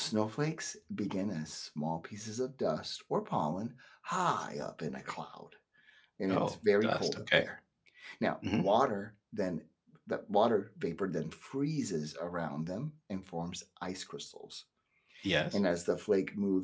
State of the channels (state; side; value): identical; both; correlation 1.00